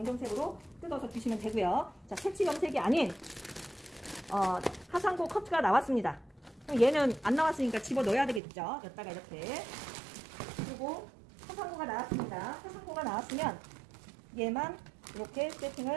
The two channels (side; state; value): left; drops out; at 8.4 s